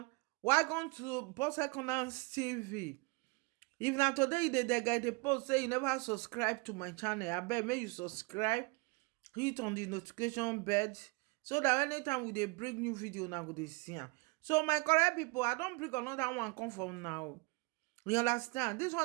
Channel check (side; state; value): left; quieter; 27.4 dB